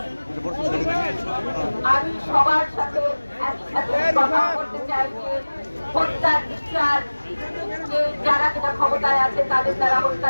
আমি সবার সাথে একসাথে কথা বলতে চাই যে হত্যার বিচার, যে যারা কিনা ক্ষমতায় আছে তাদের দ্বারা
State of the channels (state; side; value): inverted; both; correlation -1.00